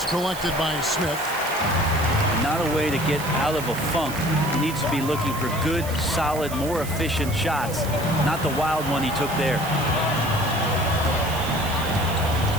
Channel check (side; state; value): right; noise; hiss, 12 dB below the sound